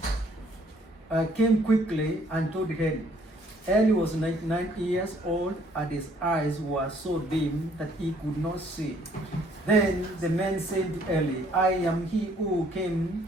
came quickly and told Eli. Eli was 99 years old, and his eyes were so dim that he could not see. Then the man said to Eli, "I am he who came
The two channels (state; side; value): normal; both; correlation 0.63